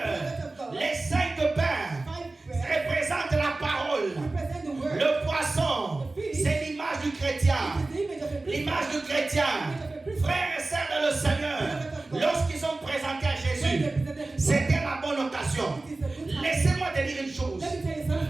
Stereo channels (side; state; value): left; quieter; 3.2 dB